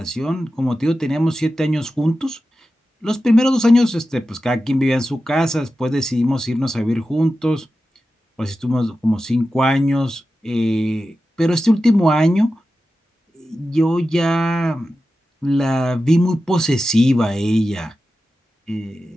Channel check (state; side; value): normal; both; correlation 0.93